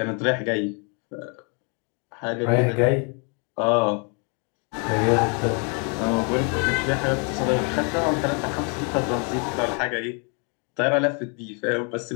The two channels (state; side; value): quieter; right; 36.7 dB